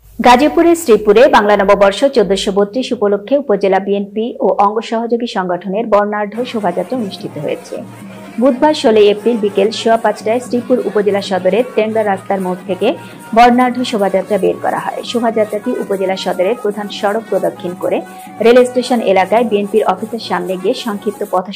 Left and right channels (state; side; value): identical; both; correlation 1.00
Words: গাজীপুরের শ্রীপুরে বাংলা নববর্ষ 1432 উপলক্ষে উপজেলা বিএনপি ও অঙ্গ সহযোগী সংগঠনের বর্ণাঢ্য শোভাযাত্রা অনুষ্ঠিত হয়েছে। বুধবার 16 এপ্রিল বিকেল 5:15টায় শ্রীপুর উপজেলা সদরের টেংরা রাস্তার মোড় থেকে বর্ণাঢ্য শোভাযাত্রা বের করা হয়। শোভাযাত্রাটি উপজেলা সদরের প্রধান সড়ক প্রদক্ষিণ করে রেল স্টেশন এলাকায় বিএনপির অফিসের সামনে গিয়ে সংক্ষিপ্ত